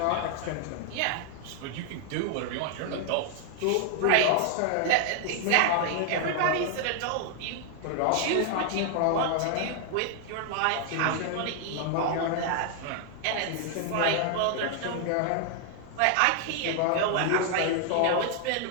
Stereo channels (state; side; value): different; both; correlation 0.00